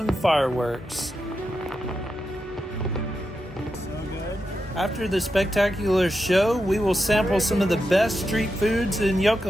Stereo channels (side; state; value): both; normal; correlation 0.87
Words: fireworks. After the spectacular show, we will sample some of the best street foods in